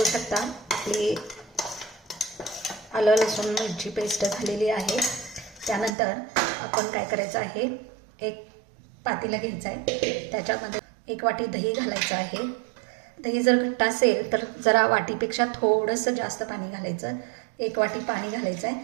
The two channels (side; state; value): left; drops out; at 5.9 s